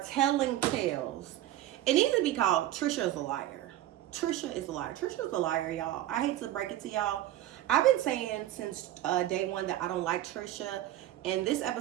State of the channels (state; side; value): quieter; left; 13.6 dB